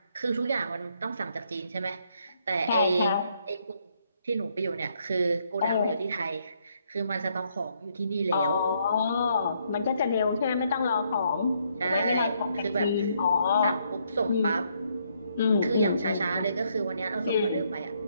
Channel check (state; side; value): inverted; both; correlation -0.72